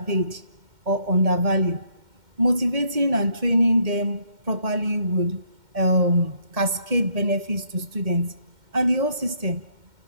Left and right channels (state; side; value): late; left; 2.1 ms